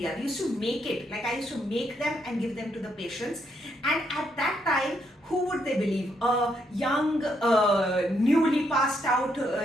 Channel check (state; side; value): normal; both; correlation 0.76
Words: We used to make it, like I used to make them and give them to the patients, and at that time, who would they believe? A young, newly passed out,